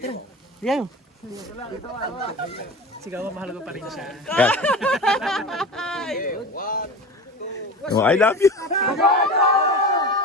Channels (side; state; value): both; normal; correlation 0.31